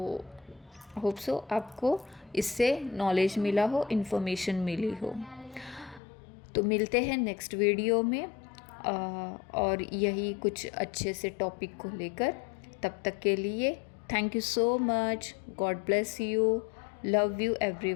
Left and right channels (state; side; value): drops out; right; at 6.0 s